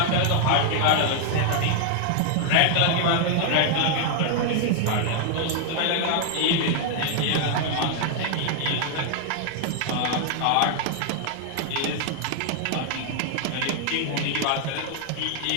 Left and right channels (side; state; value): both; different; correlation 0.00